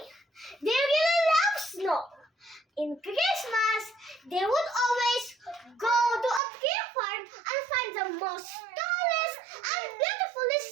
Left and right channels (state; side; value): drops out; left; at 6.4 s